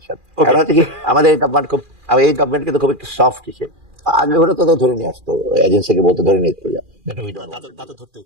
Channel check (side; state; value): left; late; 2.4 ms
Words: কারণ হচ্ছে কি, আমাদের এই গভর্নমেন্ট কিন্তু খুব একটু সফট হিসেবে, আগে ওরা তো ধরে নিয়ে আসতো, এজেন্সিকে বলতে ধরে নিয়ে চলে যাও।